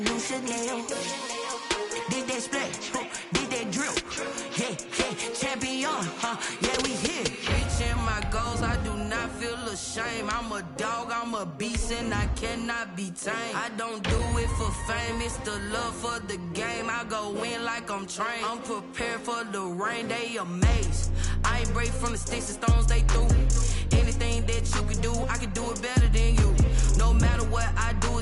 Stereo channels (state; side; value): identical; both; correlation 1.00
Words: new Chanel. Did that splash, did that drip. Yeah, champion, yeah, we here. Reaching my goals, I do not feel ashamed. I'm a dog, I'm a beast, and I cannot be tamed. I don't do it for fame, it's the love for the game. I go in like I'm trained. I'm prepared for the rain, they amazed. I ain't break from the sticks and stones they threw. Anything that you can do, I can do it better than you. No matter what I do,